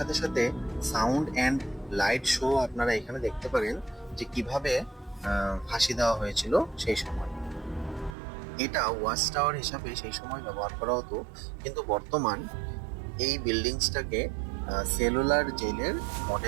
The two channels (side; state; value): left; drops out; at 8.2 s